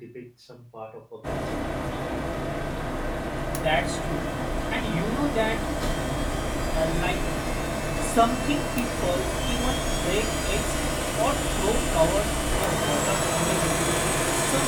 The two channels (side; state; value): both; identical; correlation 1.00